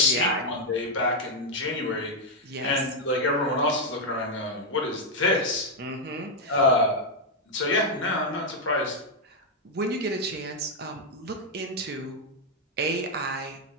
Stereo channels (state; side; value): normal; both; correlation 0.01